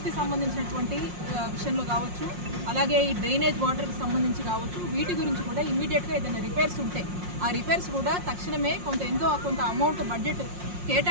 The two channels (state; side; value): late; left; 5.6 ms